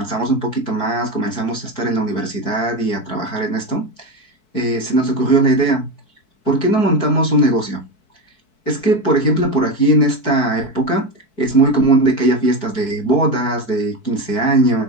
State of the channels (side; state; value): right; late; 4.6 ms